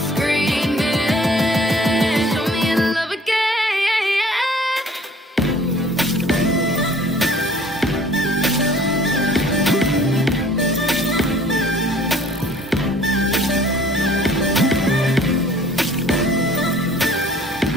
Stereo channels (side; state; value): both; normal; correlation 0.53